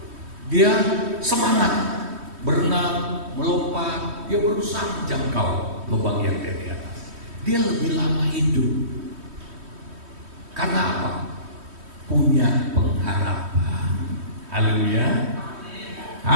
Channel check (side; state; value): left; late; 3.1 ms